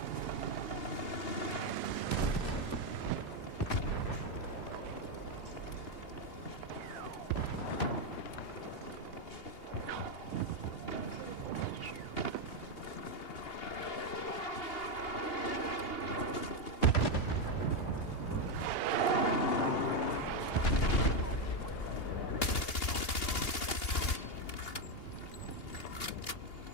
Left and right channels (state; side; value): late; right; 2.8 ms